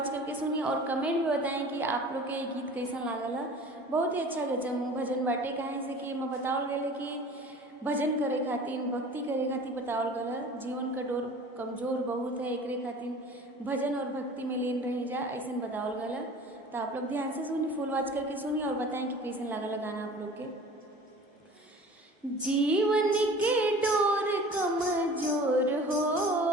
करके सुनी और कमेंट में बताएं कि आप लोग के ये गीत कैसा लागल है। बहुत ही अच्छा गजब भजन बाटे, काहे से कि मैं बतावल गए कि भजन करे खातिर, भक्ति करे खातिर बतावल गल है। जीवन का डोर कमजोर बहुत है, एकरे खातिर भजन और भक्ति में लीन रही जा, ऐसा बतावल गल है। तो आप लोग ध्यान से सुनी, फुल वॉच करके सुनी और बताएं कि कैसे लागल गाना आप लोग के। जीवन के डोर कमजोर हो,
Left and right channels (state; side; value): normal; both; correlation 0.43